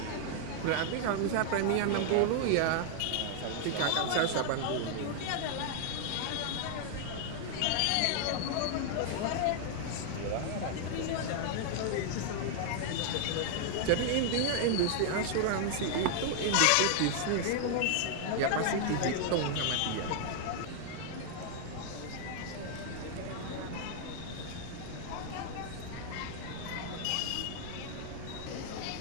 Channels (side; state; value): both; different; correlation 0.00